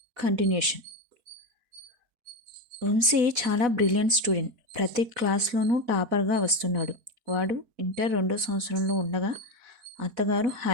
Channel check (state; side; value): late; left; 4.1 ms